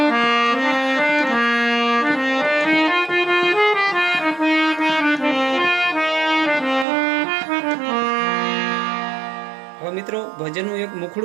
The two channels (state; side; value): drops out; left; at 6.9 s